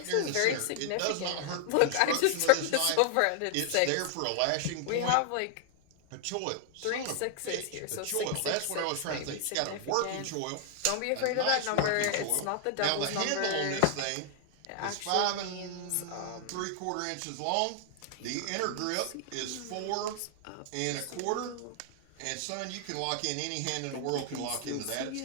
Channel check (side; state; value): both; different; correlation 0.00